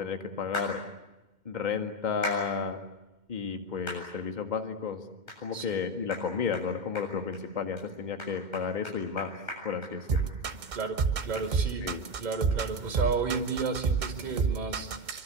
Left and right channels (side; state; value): left; late; 2.1 ms